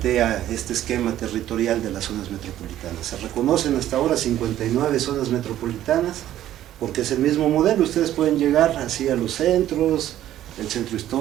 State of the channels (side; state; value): left; quieter; 12.6 dB